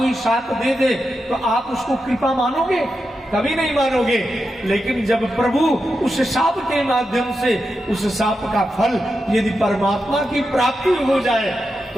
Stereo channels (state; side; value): normal; both; correlation 0.88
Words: श्राप दे दे तो आप उसको कृपा मानोगे? कभी नहीं मानोगे। लेकिन जब प्रभु उस शाप के माध्यम से उस शाप का फल यदि परमात्मा की प्राप्ति हो जाए